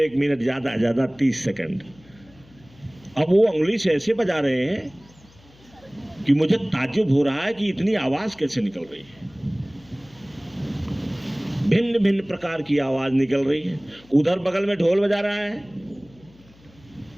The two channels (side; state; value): left; noise; hum, 27 dB below the sound